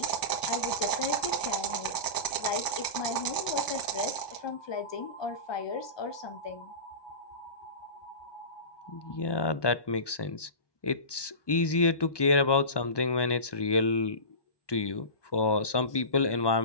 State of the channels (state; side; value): late; right; 1.2 ms